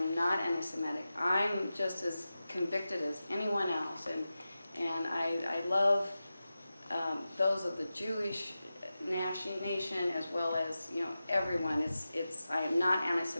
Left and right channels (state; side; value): inverted; both; correlation -0.93